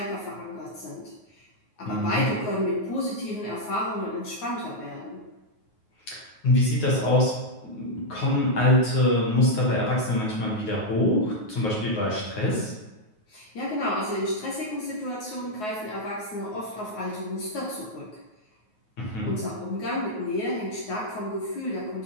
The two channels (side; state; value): right; late; 9.4 ms